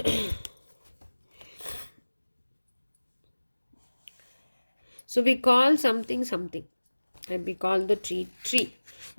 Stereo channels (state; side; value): inverted; both; correlation -1.00